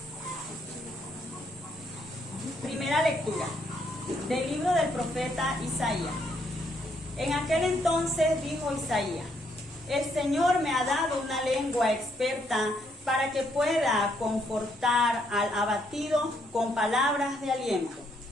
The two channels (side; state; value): both; normal; correlation 0.73